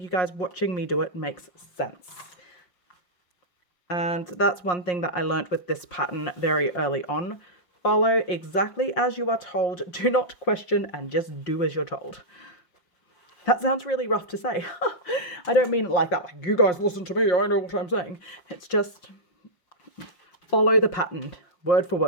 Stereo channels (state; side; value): late; right; 5.6 ms